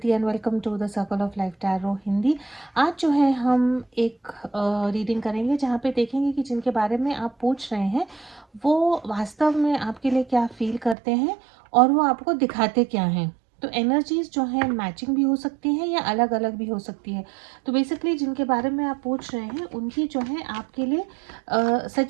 and welcome to the circle of life tarot Hindi. आज जो है हम एक रीडिंग करेंगे जहाँ पे देखेंगे कि जिनके बारे में आप पूछ रहे हैं वो वास्तव में आपके लिए क्या फील करते हैं और वो आपको दिखाते क्या हैं। तो एनर्जीज जो है मैचिंग भी हो सकती हैं या अलग अलग भी हो सकती है। तो बेसिकली जिनके बारे में आप पूछ रहे हैं उनकी जो है आपके लिए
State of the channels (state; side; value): drops out; left; at 11.0 s